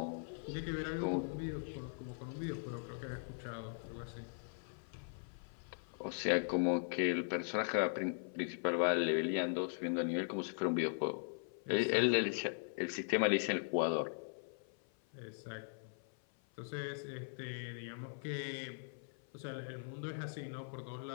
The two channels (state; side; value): silent; right; 51 dB below the other